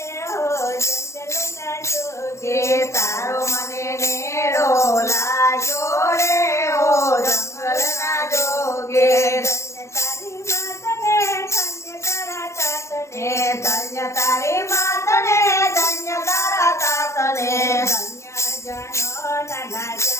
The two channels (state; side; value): late; right; 0.13 ms